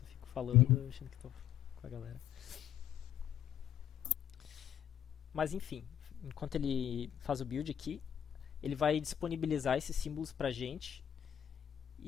fico falando, achando que tô com a galera. Mas enfim, enquanto ele faz o build aqui, ele vai disponibilizar esses símbolos pra gente,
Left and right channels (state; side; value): quieter; right; 10.1 dB